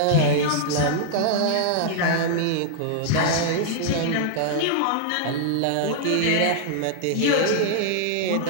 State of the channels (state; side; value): different; both; correlation -0.01